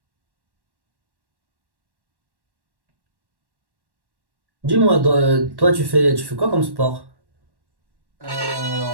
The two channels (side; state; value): left; late; 1.1 ms